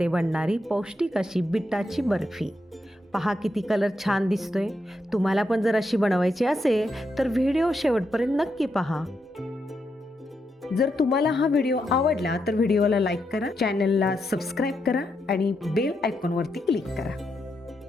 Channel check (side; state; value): both; normal; correlation 0.82